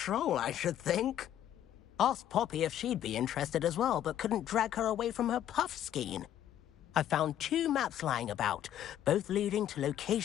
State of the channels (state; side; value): quieter; right; 11.3 dB